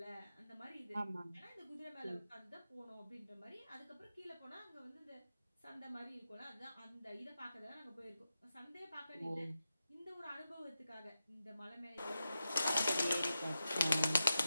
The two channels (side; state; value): both; inverted; correlation -0.91